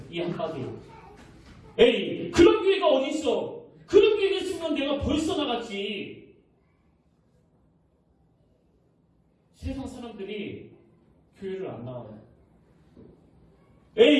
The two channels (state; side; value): identical; both; correlation 1.00